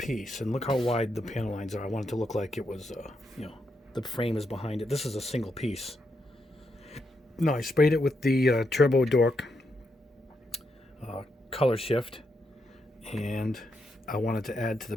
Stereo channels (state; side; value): normal; both; correlation 0.81